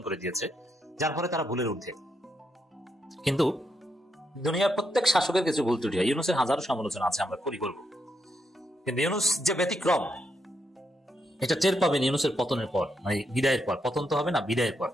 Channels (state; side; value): normal; both; correlation 0.80